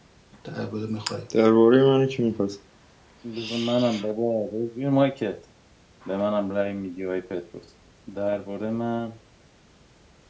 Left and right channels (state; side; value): identical; both; correlation 1.00